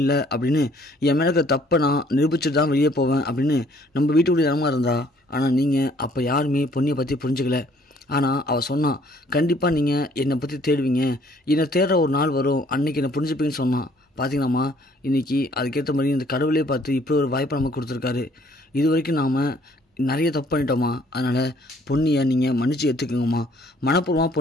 அப்படின்னு என் மேலே இருக்க தப்பை நான் நிரூபிச்சுட்டு தான் வெளியே போவேன் அப்படின்னு நம்ம வீட்டுக்குள்ளே இடமா இருந்தா, ஆனால் நீங்கள் அப்போ யாருமே பொன்னியை பற்றி புரிஞ்சுக்கல, ஆனால் அவள் சொன்னான் கண்டிப்பாக நீங்கள் என்னை பற்றி தேடுவீங்க, என்னை தேடுற ஒரு நாள் வரும், அன்றைக்கி என்னை புரிஞ்சுப்பீங்கன்னு சொன்னான், பார்த்தீங்களாம்மா இன்றைக்கி அதுக்கேற்ற மாதிரி இந்த கடவுளே பார்த்து இப்படி ஒரு வாய்ப்பை நமக்கு கொடுத்துருக்காரு, இது வரைக்கும் நாம் நிறைய தப்பு பண்ணிட்டோம்மா, அதனால் பொன்னியை நீங்கள் மன்னிச்சு ஏற்றுக்குங்கம்மா, மனப்பூர்வமாக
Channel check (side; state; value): both; normal; correlation 0.61